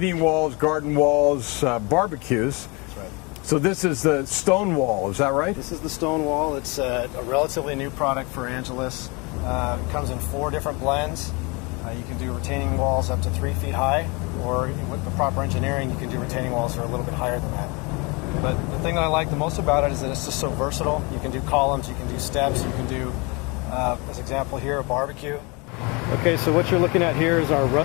walls, garden walls, barbecues. That's right. So this is the stone wall, is that right? This is the stone wall. It's a relatively new product for Angelus. It comes in 4 different blends. You can do retaining walls up to 3 feet high, or with the proper engineering, you can do retaining walls that are a little bit higher than that. But the thing that I like the most about it is that it's just so versatile. You can do columns, you can do steps, you can do, as example here, a barbecue. Okay, so what you're looking at here is our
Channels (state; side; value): quieter; right; 28.5 dB